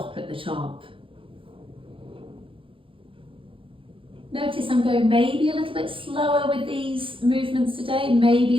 at the top. Notice I'm going maybe a little bit slower with these movements today, maybe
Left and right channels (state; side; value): late; left; 0.25 ms